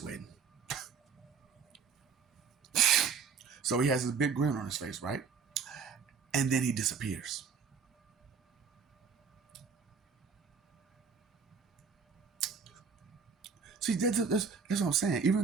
So he has this big grin on his face, right? And then he disappears. See, that's what I'm saying.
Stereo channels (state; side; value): quieter; left; 5.9 dB